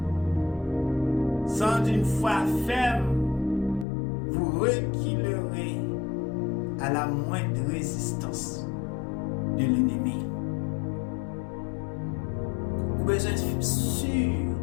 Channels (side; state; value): right; drops out; at 3.9 s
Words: Sans une foi ferme, vous reculerez à la moindre résistance de l'ennemi. Vous avez besoin d'être sûr